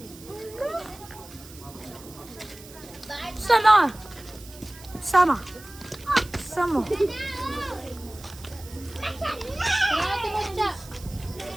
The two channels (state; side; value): noise; right; hiss, 19 dB below the sound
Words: Sama! Sama! Sama!